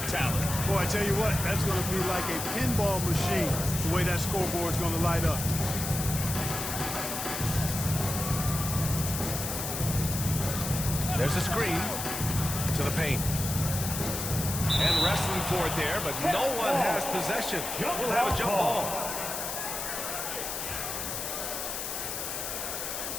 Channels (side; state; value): left; noise; hiss, 4 dB below the sound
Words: talent. Boy, I tell you what, that's going to be like a pinball machine, the way that scoreboard's going to light up. There's a screen to the paint. And wrestling for it there, but no one has possession. We'll have a jump ball.